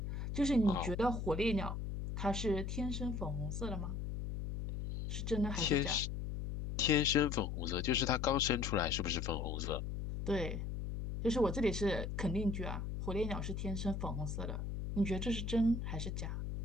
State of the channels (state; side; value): noise; left; hum, 4 dB below the sound